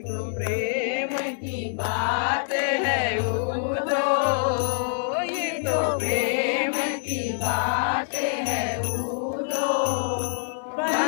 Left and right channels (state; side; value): silent; right; digital silence